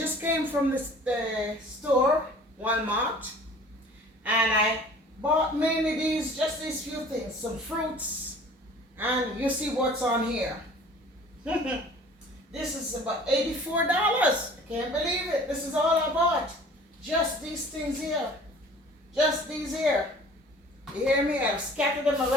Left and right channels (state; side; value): normal; both; correlation 0.48